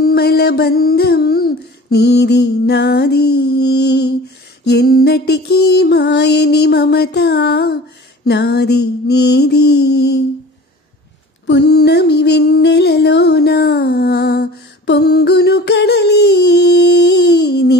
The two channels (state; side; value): normal; both; correlation 0.41